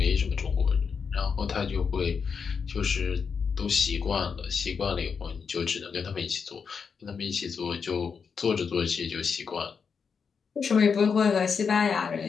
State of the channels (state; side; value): quieter; right; 6.0 dB